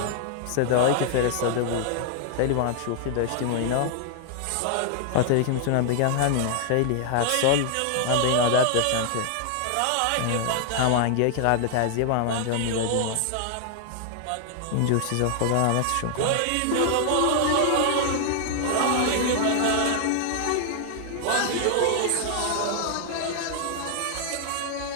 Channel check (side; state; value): both; different; correlation 0.00